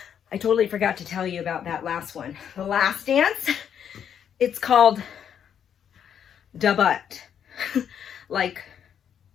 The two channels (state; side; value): quieter; right; 8.6 dB